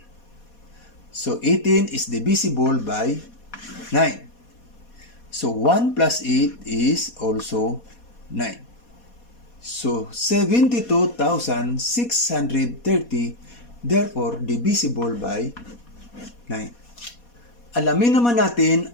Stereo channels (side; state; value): right; late; 4.2 ms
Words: So 18 is divisible by 9. So 1 plus 8 is also 9. So 72,630 therefore divisible by 9. Alamin naman natin